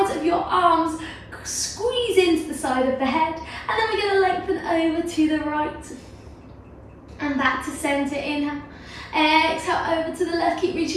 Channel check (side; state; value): both; identical; correlation 1.00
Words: of your arms squeeze into the side of the head, and then we're going to lengthen over to the right. And back to center, inhale, exhale over to the left, keep